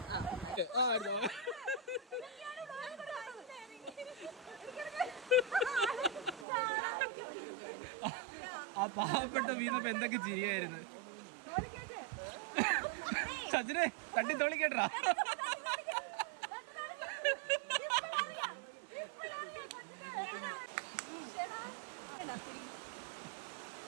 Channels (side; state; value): left; drops out; at 6.5 s